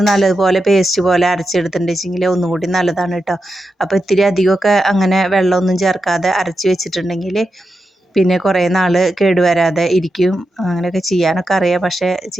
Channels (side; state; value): both; normal; correlation 0.88